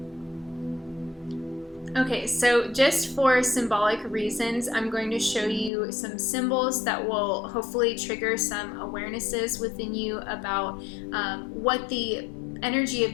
Okay, so just for symbolic reasons, I'm going to show you some symbols that will hopefully trigger some awarenesses within you about what the energy of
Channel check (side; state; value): right; drops out; at 5.7 s